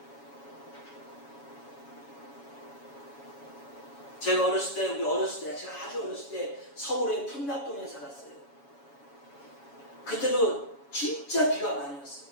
제가 제가 아주 어렸을 때 서울의 풍납동에 살았어요. 그때도 진짜 비가 많이 왔어요.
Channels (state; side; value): late; right; 7.1 ms